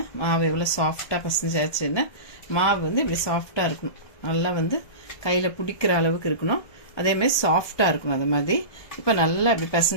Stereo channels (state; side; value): late; right; 1.2 ms